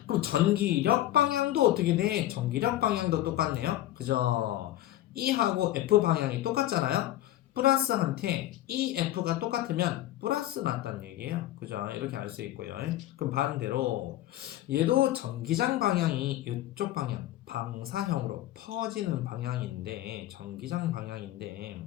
그럼 전기력 방향도 어떻게 돼? 전기력 방향도 똑같네요. 그죠? E하고 F 방향이 똑같잖아요. 플러스한테 EF가 똑같으면 플러스 맞다는 얘기예요. 그죠? 이렇게 알 수 있고요. 그럼 반대로 얘도 전기장 방향이 이쪽 방향 방사형으로 퍼지는 방향인데 전기장 방향인데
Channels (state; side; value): quieter; right; 14.3 dB